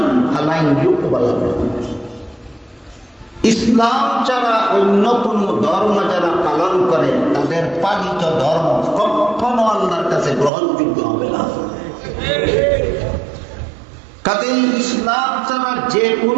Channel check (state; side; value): drops out; left; at 10.5 s